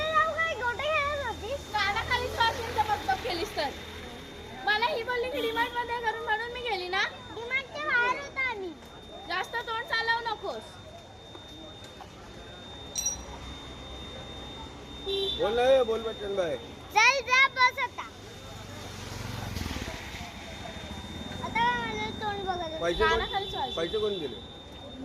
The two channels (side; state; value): both; identical; correlation 1.00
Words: जाऊ काय गोटे खेळत होतीस कानाखाली श्वासांचा मतलब केलीस तर मला ही बोलली की डिमांड मध्ये करून म्हणून मी गेली ना. डिमांडच्या बाहेर होता आम्ही जास्त तोंड चालवू नकोस. बोल ना बोल बच्चन भाई. चल जा बस आता आता मला तोंड बघत पैसे कानाखाली श्वास. पैसे कोण दिले?